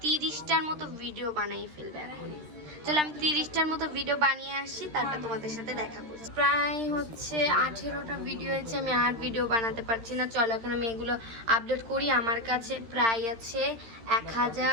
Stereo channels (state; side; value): late; left; 13 ms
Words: 30টার মতো ভিডিও বানাই ফেলবো এখন। চলো আমি 30টার মতো ভিডিও বানিয়ে আসি, তারপর তোমাদের সাথে দেখা করছি। প্রায় হচ্ছে 18টা ভিডিও হয়েছে, আমি আর ভিডিও বানাতে পারছি না। চলো এখন আমি এগুলো আপলোড করি। আমার কাছে প্রায় আছে